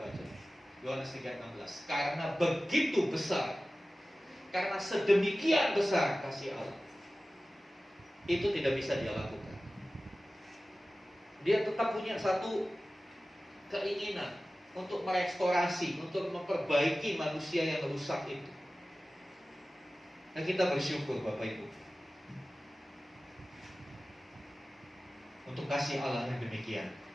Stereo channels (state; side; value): normal; both; correlation 0.96